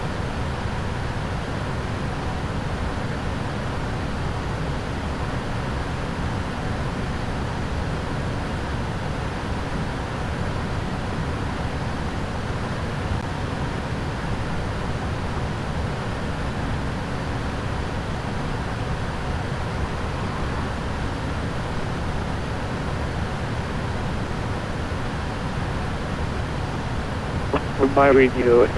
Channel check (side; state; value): both; identical; correlation 1.00